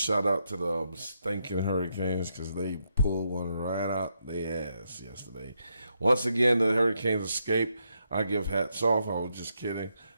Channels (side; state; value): both; inverted; correlation -0.80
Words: out to the stinking Hurricanes because they pulled one right out their ass yesterday. Once again, the Hurricanes escaped. I give hats off. I was just kidding.